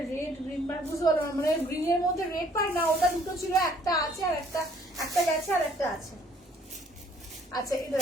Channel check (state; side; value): normal; both; correlation 0.61